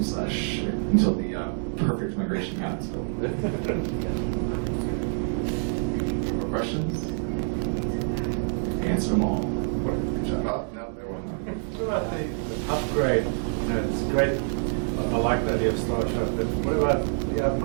the perfect migration happens. More questions? Answer them all. Good job. Oh, no, there wasn't. What about the upgrade? It's great. I like the idea of Starshot, but what about the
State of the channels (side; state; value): left; silent; 60 dB below the other